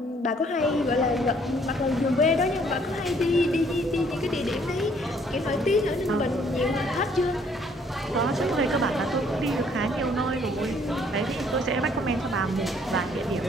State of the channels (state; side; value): normal; both; correlation 0.63